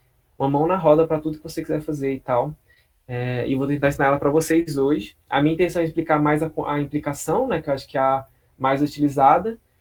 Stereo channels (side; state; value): both; identical; correlation 1.00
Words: uma mão na roda para tudo que você quiser fazer e tal. E vou tentar ensinar ela para vocês hoje. A minha intenção é explicar mais a implicação, né? Que eu acho que é a mais utilizada.